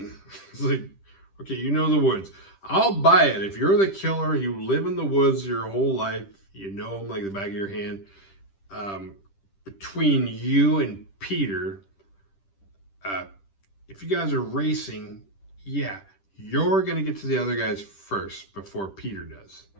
It's like, okay, you know the woods. I'll buy it. If you're the killer, you live in the woods your whole life, you know them like the back of your hand. Between you and Peter, if you guys are racing, yeah, you're going to get to the other guys first before Peter does.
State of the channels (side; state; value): right; late; 10 ms